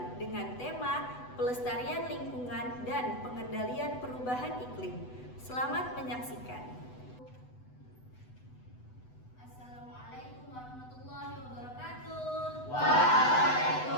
dengan tema Pelestarian Lingkungan dan Pengendalian Perubahan Iklim. Selamat menyaksikan. Assalamualaikum warahmatullahi wabarakatuh.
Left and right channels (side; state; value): right; late; 8.0 ms